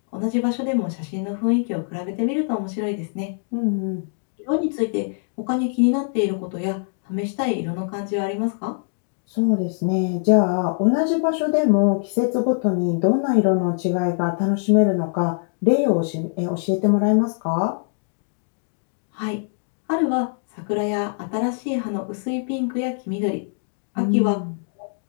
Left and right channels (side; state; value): right; silent; digital silence